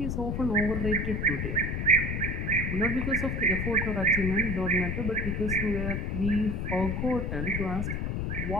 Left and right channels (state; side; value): noise; left; rumble, 1 dB below the sound